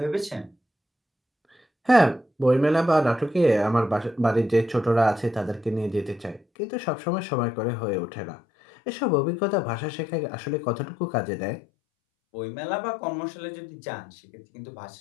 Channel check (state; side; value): drops out; right; at 6.4 s